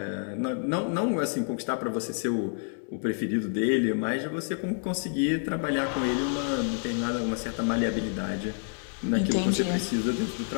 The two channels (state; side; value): silent; right; 59 dB below the other